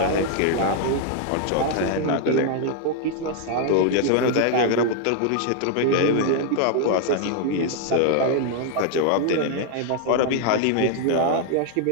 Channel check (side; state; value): both; different; correlation 0.00